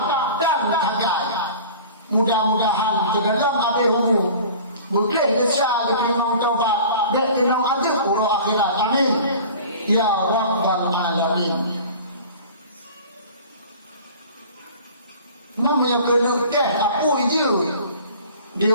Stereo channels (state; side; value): inverted; both; correlation -0.42